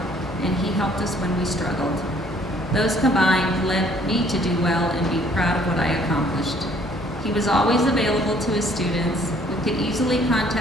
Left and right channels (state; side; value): normal; both; correlation 0.60